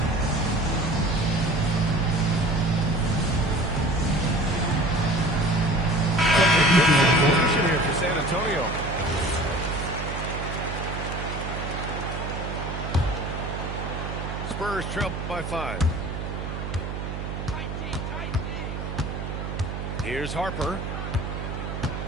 Substitution here for San Antonio. Spurs trail by 5. Here's Harper.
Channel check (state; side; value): noise; right; hum, 5 dB below the sound